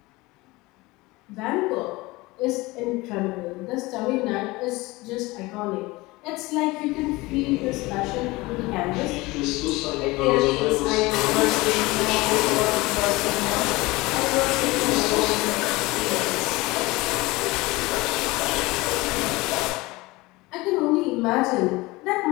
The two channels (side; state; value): right; quieter; 21.7 dB